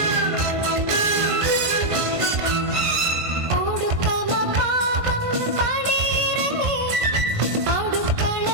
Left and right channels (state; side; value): late; left; 1.5 ms